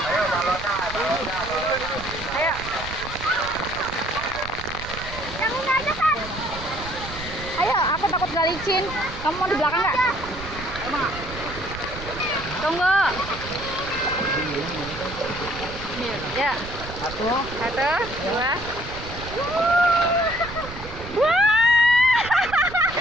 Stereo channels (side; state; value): right; noise; rumble, 12 dB below the sound